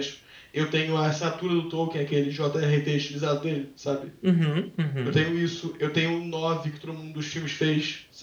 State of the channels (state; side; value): identical; both; correlation 1.00